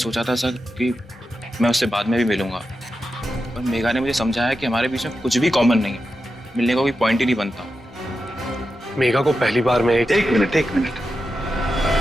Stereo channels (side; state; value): both; normal; correlation 0.89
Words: था सर कि मैं उससे बाद में भी मिलूंगा, पर मेघा ने मुझे समझाया कि हमारे बीच में कुछ भी कॉमन नहीं है, मिलने का कोई पॉइंट ही नहीं बनता। मेघा को पहली बार में एक मिनट।